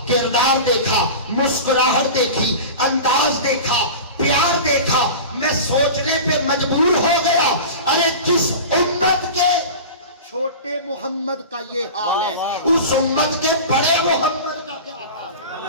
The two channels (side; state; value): both; inverted; correlation -0.32